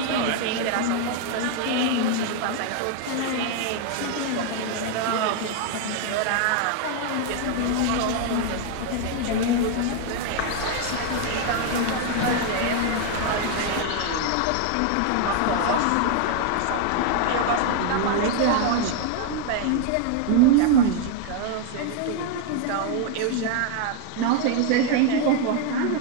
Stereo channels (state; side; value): different; both; correlation 0.01